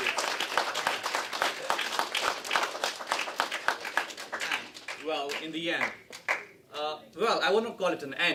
And, well, in the end, well, I wouldn't call it an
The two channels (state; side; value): identical; both; correlation 1.00